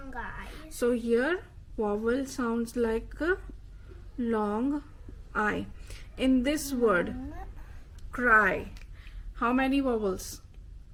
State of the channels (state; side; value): identical; both; correlation 1.00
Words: I. So here vowel sounds like a long I. In this word, cry, how many vowels?